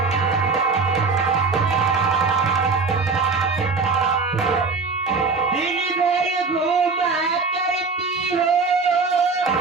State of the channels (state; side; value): quieter; left; 4.5 dB